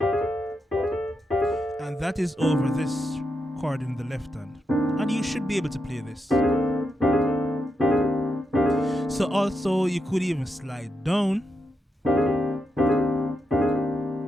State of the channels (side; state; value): both; normal; correlation 0.85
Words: And that is over this chord in the left hand. And you should be able to play this. So also you could even slide down.